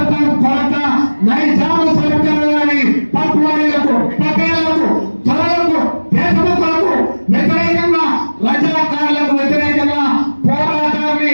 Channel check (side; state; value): both; inverted; correlation -1.00